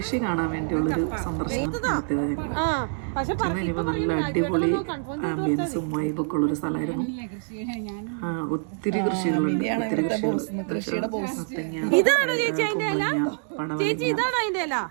കാണാൻ വേണ്ടിയുള്ളൊരു സന്ദർശനം നടത്തിയത് ഞങ്ങൾ. ഇനിയിപ്പോൾ നല്ല അടിപൊളി ആംബിയൻസും വൈബൊക്കെ ഉള്ളൊരു സ്ഥലമായിരുന്നു. ഒത്തിരി കൃഷികളുണ്ട്. ഒത്തിരി കൃഷികൾ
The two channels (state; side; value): silent; left; digital silence